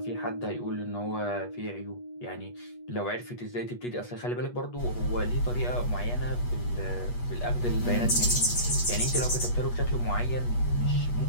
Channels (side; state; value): right; late; 8.3 ms